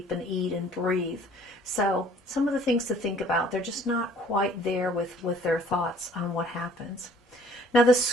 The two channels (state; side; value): normal; both; correlation 0.56